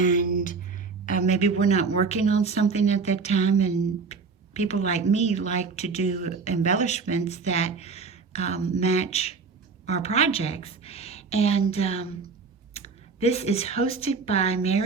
maybe we're not working on something at that time, and people like me like to do embellishments that match our projects. And this is hosted by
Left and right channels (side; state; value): left; quieter; 4.9 dB